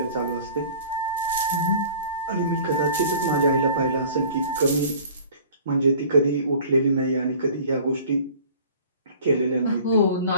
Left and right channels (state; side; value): inverted; both; correlation -0.47